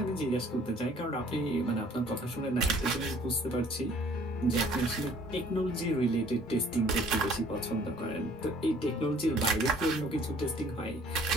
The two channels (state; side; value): normal; both; correlation 0.56